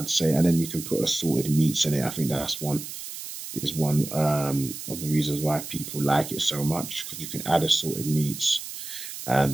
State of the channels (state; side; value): noise; right; hiss, 9 dB below the sound